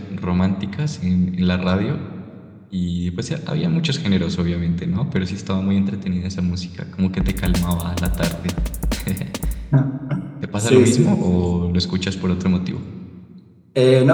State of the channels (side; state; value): both; identical; correlation 1.00